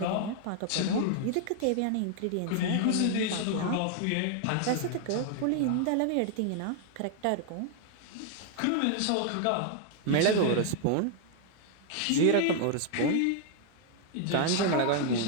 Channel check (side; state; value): both; different; correlation 0.00